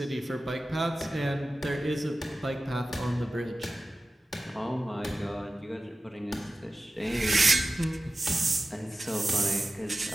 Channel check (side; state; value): both; normal; correlation 0.94